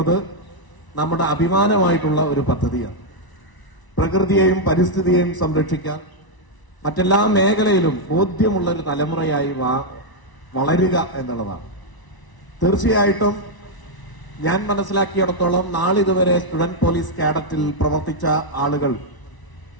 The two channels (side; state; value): right; late; 1.0 ms